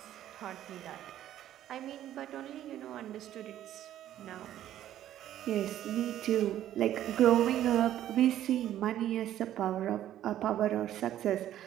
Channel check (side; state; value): left; quieter; 12.1 dB